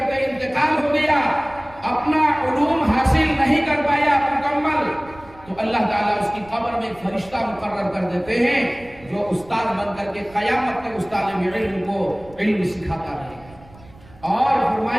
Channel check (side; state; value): right; noise; rumble, 23 dB below the sound